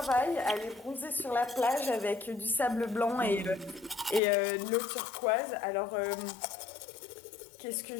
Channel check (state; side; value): drops out; right; at 4.2 s